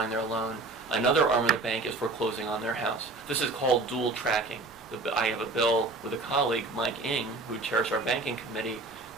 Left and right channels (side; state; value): left; quieter; 3.3 dB